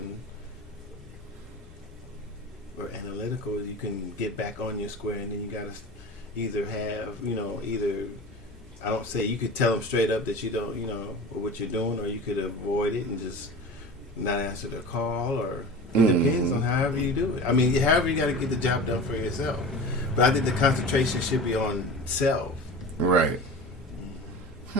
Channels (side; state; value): both; normal; correlation 0.33